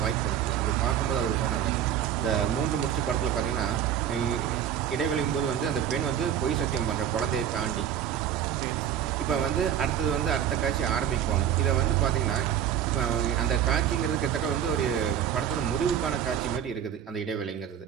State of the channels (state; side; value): quieter; left; 9.6 dB